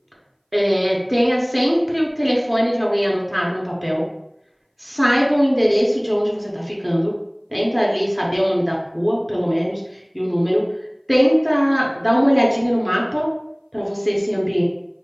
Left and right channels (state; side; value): identical; both; correlation 1.00